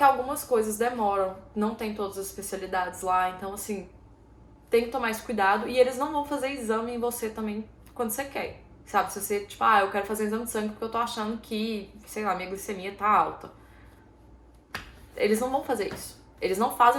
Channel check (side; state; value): both; identical; correlation 1.00